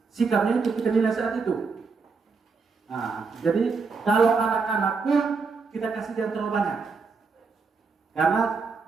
sikapnya itu kita nilai saat itu. Nah, jadi kalau anak-anak pun kita kasih jangan terlalu banyak, karena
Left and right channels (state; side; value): quieter; left; 4.8 dB